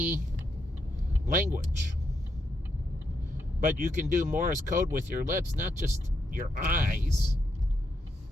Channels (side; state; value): both; normal; correlation 0.80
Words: language. But you can do Morse code with your lips, not just your eyes,